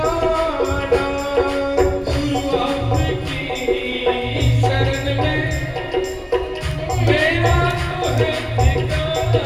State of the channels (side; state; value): both; identical; correlation 1.00